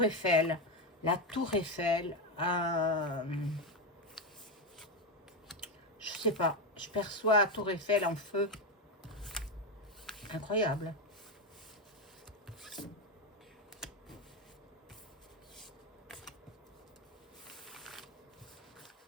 Eiffel. La tour Eiffel. Je sais pas. Je perçois la tour Eiffel en feu. Incroyable.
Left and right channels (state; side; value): normal; both; correlation 0.10